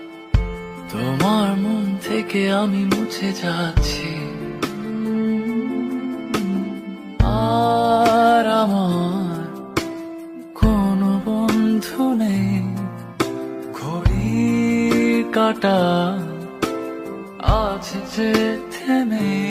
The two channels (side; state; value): both; identical; correlation 1.00